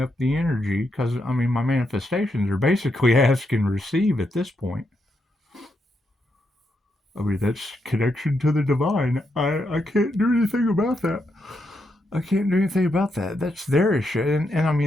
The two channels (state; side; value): normal; both; correlation 0.81